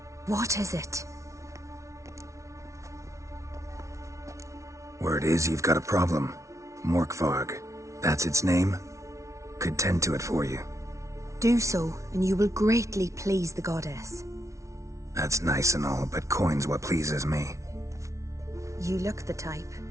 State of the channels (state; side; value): late; left; 0.14 ms